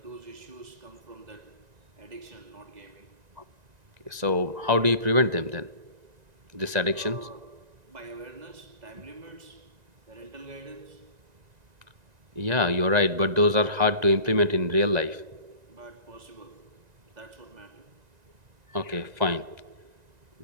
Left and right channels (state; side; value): late; left; 1.9 ms